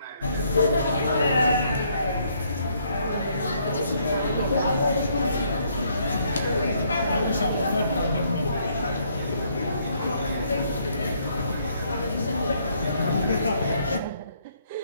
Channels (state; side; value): inverted; both; correlation -0.69